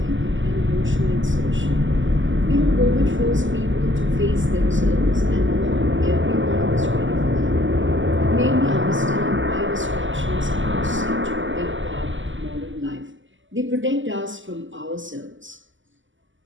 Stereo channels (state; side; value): late; left; 0.55 ms